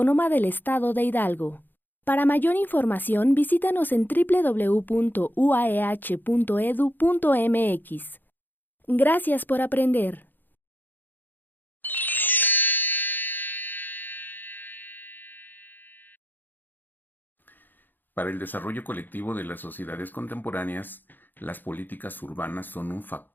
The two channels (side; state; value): right; late; 0.090 ms